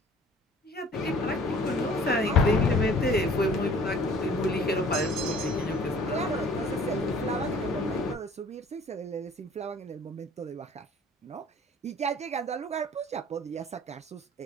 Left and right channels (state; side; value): normal; both; correlation 0.51